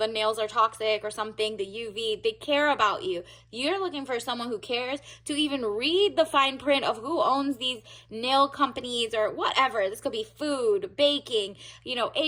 nails are toxic or something, the UV, they care about you. You're looking for someone who cares to even read the fine print of who owns these nail companies or whatever. This could be food, baking,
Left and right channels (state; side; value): identical; both; correlation 1.00